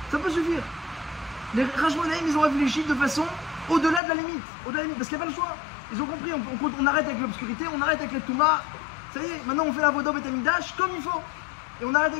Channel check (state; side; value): drops out; right; at 4.0 s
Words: Ça peut suffire. Les Rashmonaïm, ils ont réfléchi de façon au-delà de la limite. Parce qu'il n'y a pas le choix. Ils ont compris, on arrête avec l'obscurité, on arrête avec les Touma. Ça y est, maintenant on fait la Voda Beth Amikdash comme il faut. Et on arrête